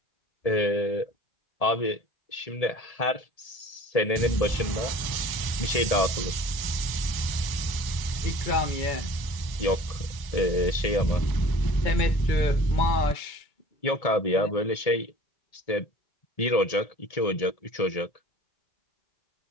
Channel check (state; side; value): late; right; 1.8 ms